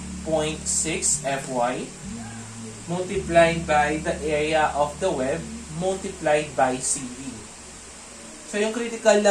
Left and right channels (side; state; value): both; identical; correlation 1.00